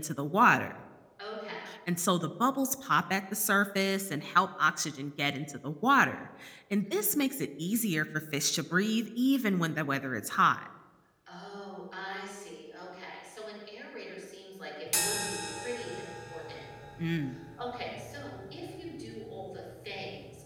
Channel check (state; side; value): identical; both; correlation 1.00